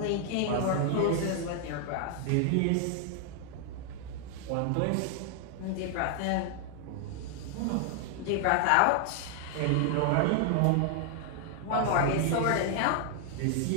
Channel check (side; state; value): both; different; correlation 0.00